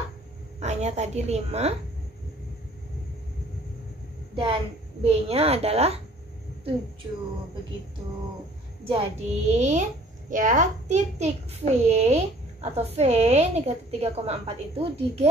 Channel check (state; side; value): normal; both; correlation 0.54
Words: A-nya tadi 5. Dan B-nya adalah 7. Begitu. Jadi, ya, titik V atau V negatif 3,4 itu